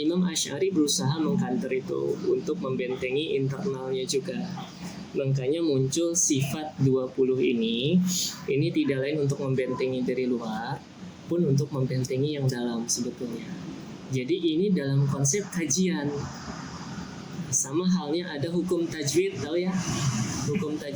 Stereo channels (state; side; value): identical; both; correlation 1.00